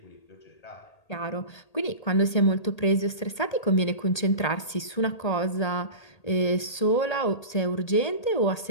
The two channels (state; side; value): late; right; 1.8 ms